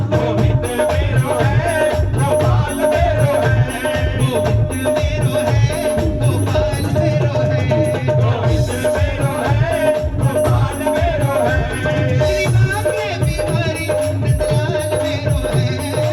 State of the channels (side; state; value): both; identical; correlation 1.00